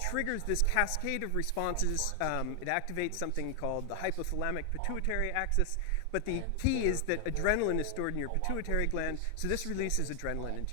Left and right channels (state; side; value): different; both; correlation 0.00